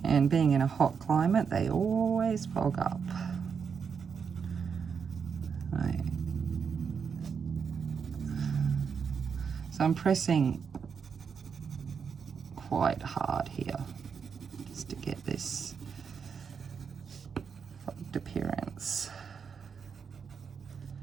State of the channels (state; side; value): quieter; left; 6.4 dB